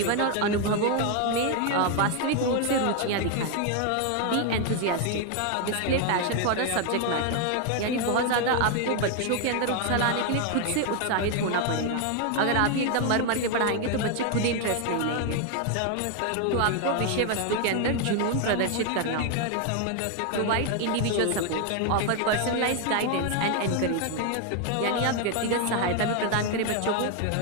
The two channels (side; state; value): both; different; correlation 0.01